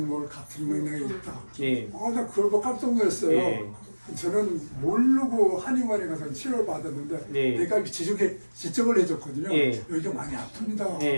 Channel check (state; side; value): inverted; both; correlation -1.00